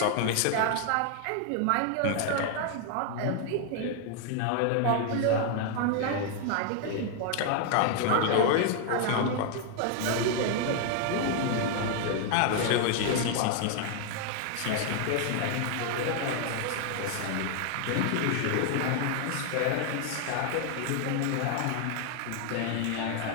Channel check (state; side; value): different; both; correlation 0.00